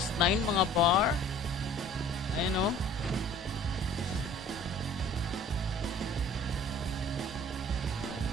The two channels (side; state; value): both; normal; correlation 0.49